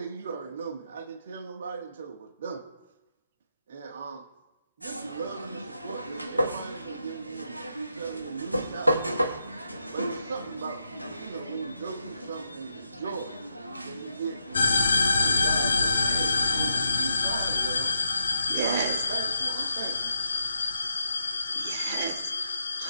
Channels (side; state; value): both; inverted; correlation -0.81